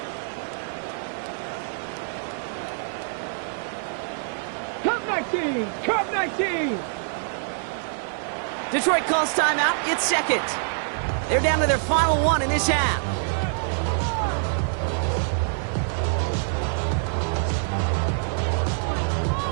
Cup 19. Detroit calls timeout. It's second. They're down to their final one in this half.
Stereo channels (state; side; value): silent; left; 57 dB below the other